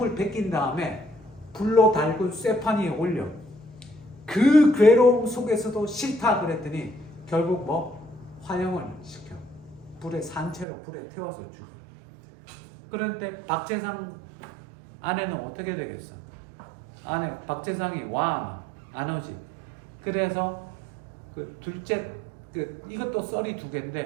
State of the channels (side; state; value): left; drops out; at 10.7 s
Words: 벗긴 다음에 불로 달군 쇠판 위에 올려. 그 괴로움 속에서도 싫다 그랬더니 결국 뭐 화형을 시켜. 산채로 불에 태워서 죽여. 그런데 박재상 아내는 어떻게 되겠어? 박재상이 안 오지. 그래서 그 둘째 이것도 썰이 두